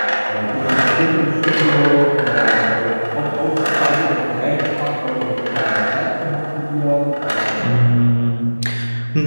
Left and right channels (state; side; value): inverted; both; correlation -1.00